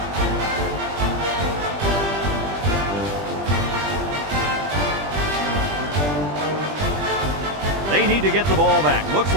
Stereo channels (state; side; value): late; left; 20 ms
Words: They need to get the ball back. Looks